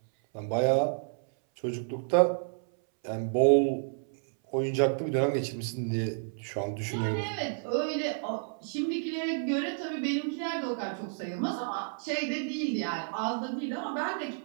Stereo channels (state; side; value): silent; left; 58 dB below the other